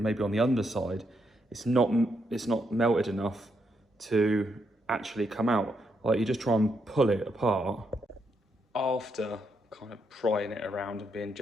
on the underside, it's not melted enough to actually come out. Like you just try and pull it apart after kind of prying it around and being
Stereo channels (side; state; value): both; normal; correlation 0.79